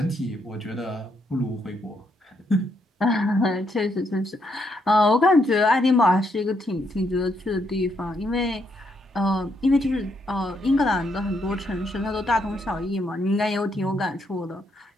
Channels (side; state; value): both; normal; correlation 0.76